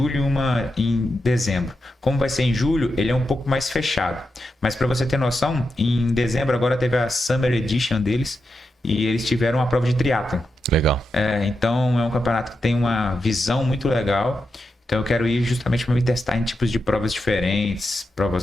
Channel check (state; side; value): normal; both; correlation 0.87